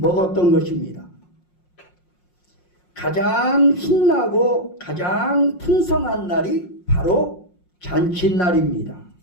것입니다. 가장 신나고 가장 풍성한 날이 바로 잔칫날입니다.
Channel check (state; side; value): late; right; 5.6 ms